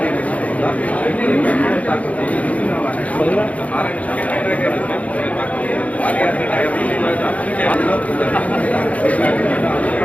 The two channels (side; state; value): right; late; 0.068 ms